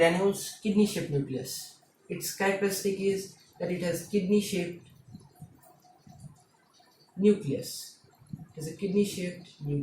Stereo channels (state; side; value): identical; both; correlation 1.00